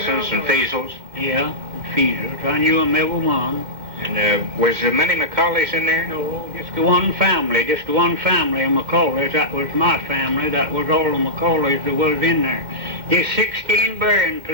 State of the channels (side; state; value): left; late; 2.2 ms